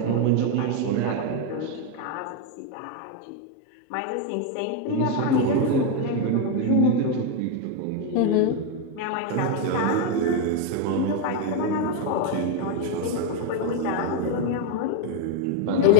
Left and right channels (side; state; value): both; different; correlation 0.02